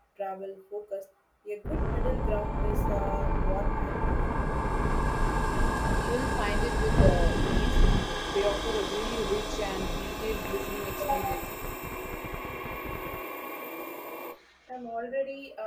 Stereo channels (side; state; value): both; identical; correlation 1.00